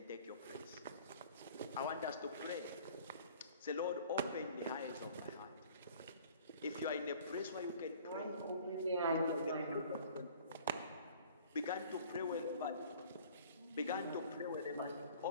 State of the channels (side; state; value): both; inverted; correlation -0.50